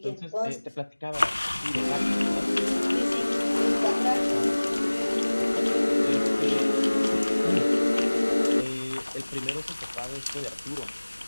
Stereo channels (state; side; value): inverted; both; correlation -1.00